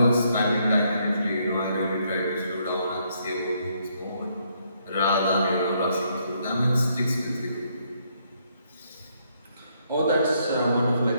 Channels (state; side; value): inverted; both; correlation -0.72